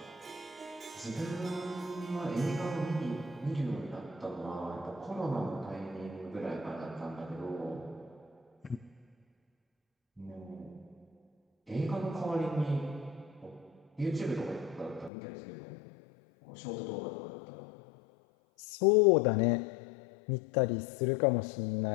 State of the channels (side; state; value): right; drops out; at 15.1 s